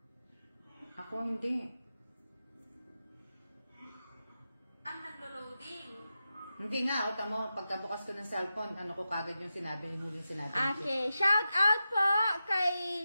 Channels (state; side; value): inverted; both; correlation -0.91